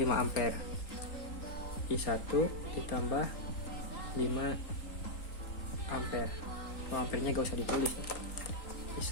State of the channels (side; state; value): right; late; 3.8 ms